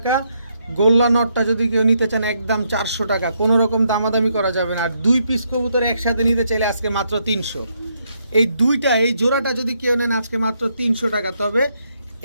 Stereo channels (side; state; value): both; inverted; correlation -0.77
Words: গোল্লা নটটা যদি কেউ নিতে চান একদম 400 টাকা, কোনো রকম দামাদামি করা যাবে না। আর 2 পিস কবুতর একসাথে নিতে চাইলে আজকে মাত্র 300। এই জোড়াটা যদি কেউ নেন আজকে মাত্র 300 টাকা। তবে